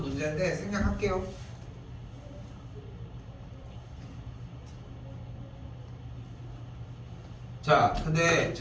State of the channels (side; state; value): both; identical; correlation 1.00